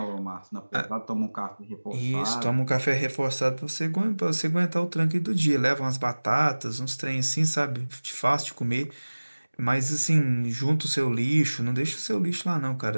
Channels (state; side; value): inverted; both; correlation -1.00